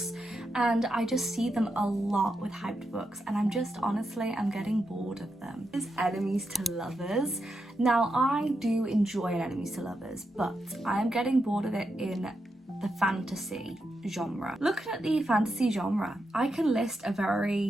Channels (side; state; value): both; normal; correlation 0.85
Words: and I just see them a lot with hyped books, and I'm getting bored of them. Is enemies to lovers. Now I do enjoy an enemies to lovers, but I am getting bored of it in the fantasy genre. Looking at the fantasy genre, I can list a